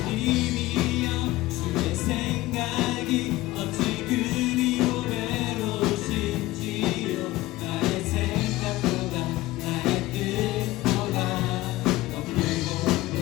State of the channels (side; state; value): right; quieter; 17.9 dB